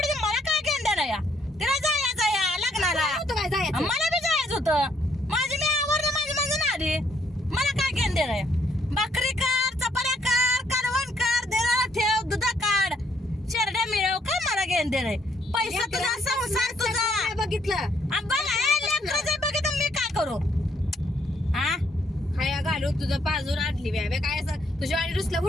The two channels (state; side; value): normal; both; correlation 0.69